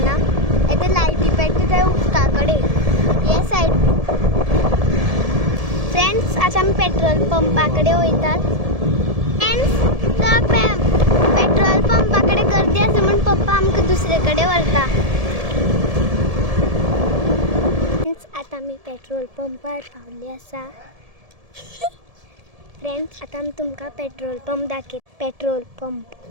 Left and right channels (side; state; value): left; late; 1.7 ms